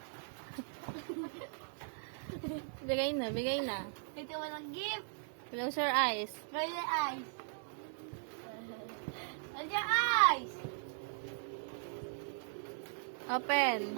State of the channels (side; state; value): left; silent; digital silence